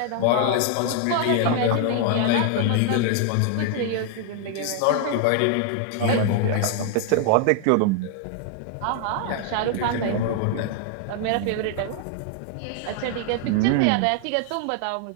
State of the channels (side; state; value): both; different; correlation 0.00